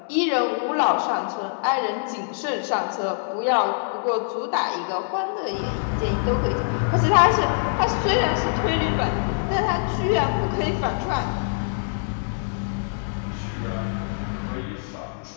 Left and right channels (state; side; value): silent; right; 61 dB below the other